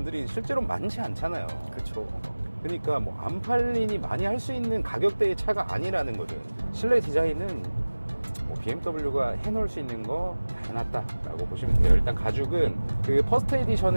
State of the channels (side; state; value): both; inverted; correlation -1.00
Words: 실제로 많지 않잖아요. 그렇죠. 그러니까 뭐 안 팔리니 많이 할 수 있는 가격대의 차가 아니라는 거죠. 실내 디자인은 뭐 BMW가 해놓을 수 있는 거 다 해놨다라고 보시면 돼요. 일단 가죽은 그 퍼스트